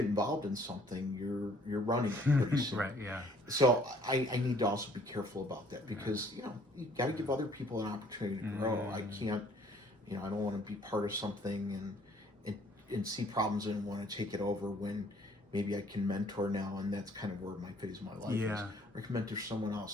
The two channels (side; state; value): both; normal; correlation 0.59